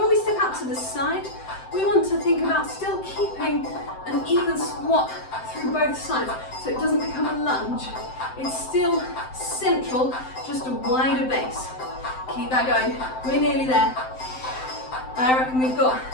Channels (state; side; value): late; right; 7.7 ms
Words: we step out to the side, we want to think about still keeping an even squat through both sides so it doesn't become a lunge. It's still central, just a wider base. Keep that going. We're nearly there. I reckon we've got